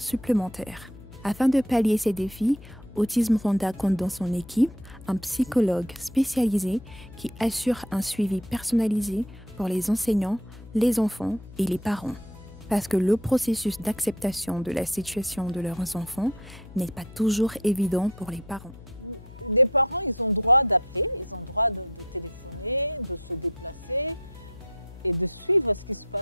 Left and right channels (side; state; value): left; noise; hum, 18 dB below the sound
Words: Afin de pallier ces défis, Autisme Rwanda compte dans son équipe un psychologue spécialisé qui assure un suivi personnalisé pour les enseignants, les enfants et les parents. Parce que le processus d'acceptation de la situation de leurs enfants n'est pas toujours évident pour les parents. Les parents, ils ont droit d'appeler, ils ont droit de téléphoner, de se déplacer et de suivre ce qui se